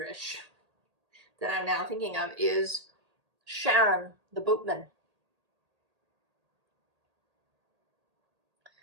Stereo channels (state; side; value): late; left; 1.8 ms